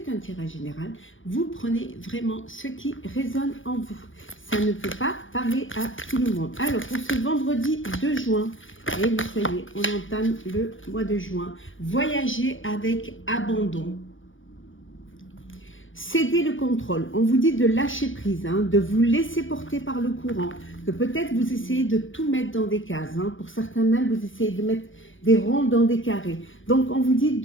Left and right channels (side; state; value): right; late; 0.57 ms